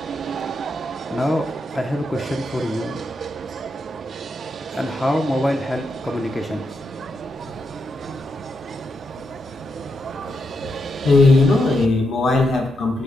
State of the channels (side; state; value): both; normal; correlation 0.83